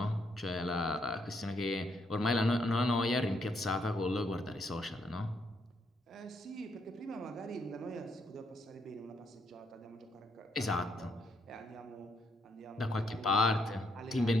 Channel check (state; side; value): normal; both; correlation 0.75